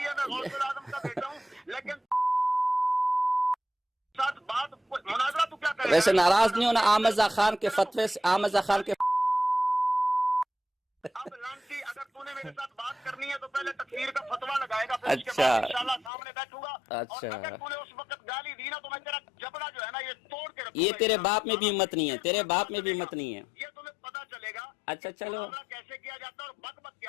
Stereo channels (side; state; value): right; drops out; at 16.1 s